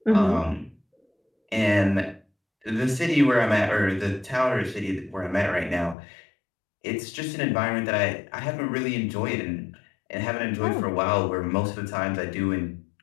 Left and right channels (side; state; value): right; drops out; at 6.0 s